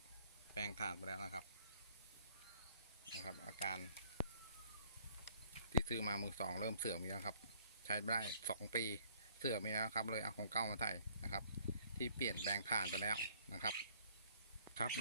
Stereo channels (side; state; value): both; inverted; correlation -0.61